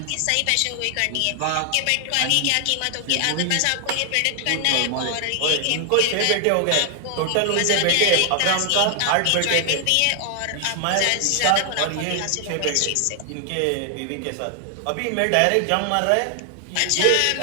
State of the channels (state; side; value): different; both; correlation 0.00